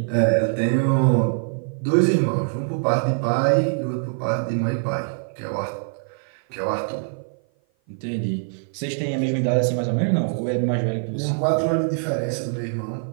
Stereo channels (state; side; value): silent; left; 56 dB below the other